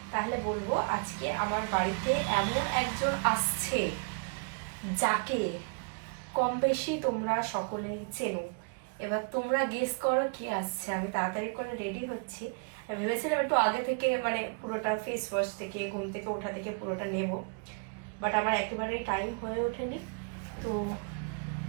তাহলে বলবো আজকে আমার বাড়িতে এমন একজন আসছে যাকে কম বেশি তোমরা সকলেই চেনো। এবার তোমরা গেস করো কে আসছে। আমি তাড়াতাড়ি করে রেডি হচ্ছি, ভেবেছিলাম একটু আগে থেকে মানে পুরোটা ফেস ওয়াশ থেকে ঘুম থেকে ওঠা থেকে পুরোটা নেব, বাট আমার একেবারেই টাইম হয়ে ওঠেনি, তো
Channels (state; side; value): quieter; left; 36.8 dB